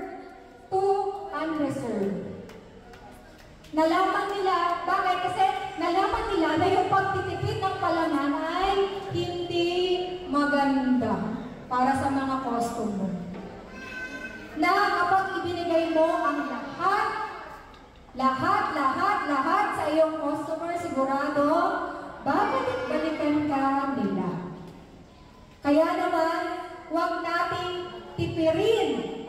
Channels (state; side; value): identical; both; correlation 1.00